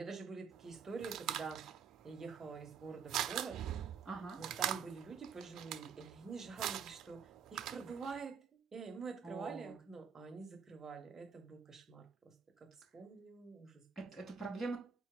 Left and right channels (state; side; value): quieter; left; 6.8 dB